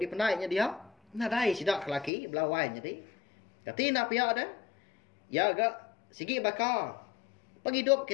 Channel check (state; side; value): drops out; right; at 2.1 s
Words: penainya dia. Nadai sidak lelaki belawai jadi. Kati nak pihak dah. Ya agak sigi bakal. Penghidup